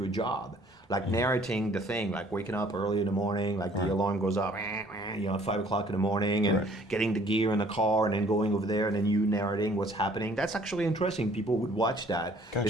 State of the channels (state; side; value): normal; both; correlation 0.58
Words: a job, like narrating the thing, like waking up early in the morning, like the alarm goes up, you know, at 5 o'clock in the morning, and getting the gear in the car, and then going over there, and then you narrating what's happening. That's actually interesting. People would watch that, Gotcha.